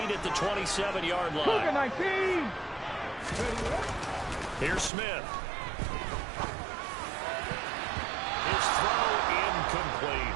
8 at the 27-yard line. Here's Smith. His throw incomplete.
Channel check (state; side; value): drops out; left; at 4.9 s